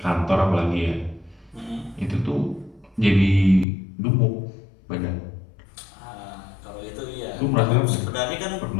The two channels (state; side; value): drops out; right; at 3.7 s